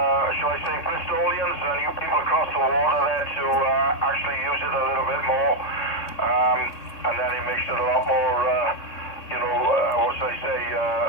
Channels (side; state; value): right; late; 3.6 ms